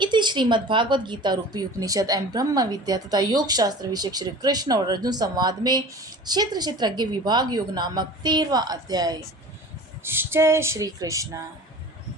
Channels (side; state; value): both; normal; correlation 0.40